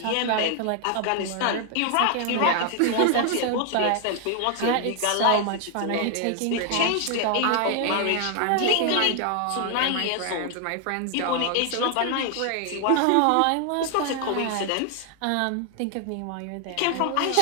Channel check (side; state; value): both; different; correlation 0.00